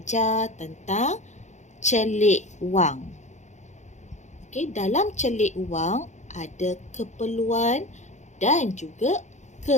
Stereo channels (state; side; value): late; right; 0.34 ms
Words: tentang celik wang. Okay, dalam celik wang ada keperluan dan juga